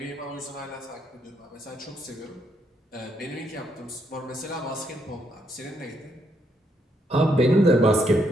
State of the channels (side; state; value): both; normal; correlation 0.75